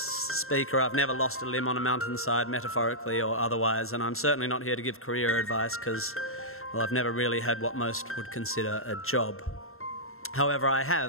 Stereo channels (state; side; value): late; right; 0.62 ms